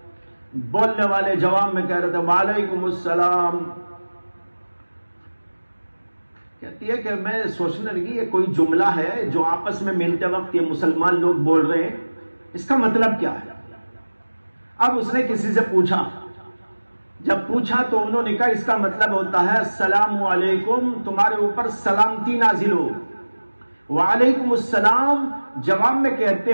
بولنے والے جواب میں کہہ رہے تھے وعلیکم السلام. کہتی ہے کہ میں سوچنے لگی یہ کوئی جملہ ہے جو آپس میں ملتے وقت یہ مسلمان لوگ بول رہے ہیں، اس کا مطلب کیا ہے. اب اس نے کسی سے پوچھا، جب پوچھا تو انہوں نے کہا اس کا مطلب ہوتا ہے السلام علیکم، تمہارے اوپر سلامتی نازل ہو. وعلیکم السلام جواب میں کہتے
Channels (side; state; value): both; inverted; correlation -1.00